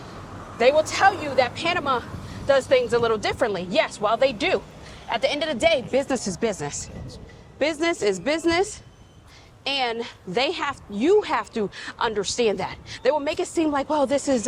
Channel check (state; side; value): identical; both; correlation 1.00